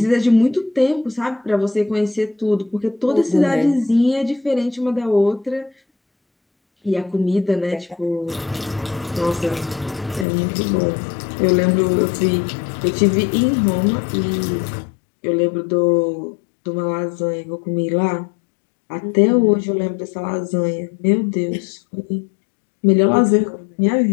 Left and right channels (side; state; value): right; drops out; at 10.2 s